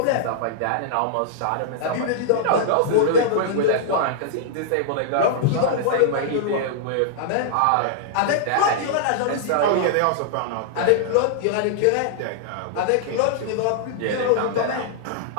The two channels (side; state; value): both; different; correlation -0.01